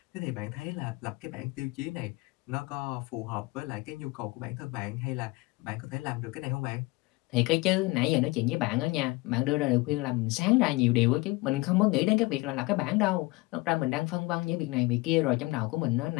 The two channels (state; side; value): quieter; right; 22.7 dB